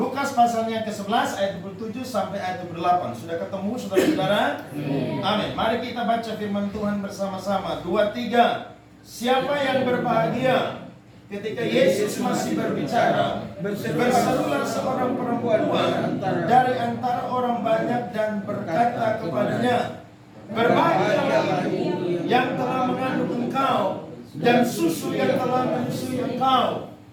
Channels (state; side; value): identical; both; correlation 1.00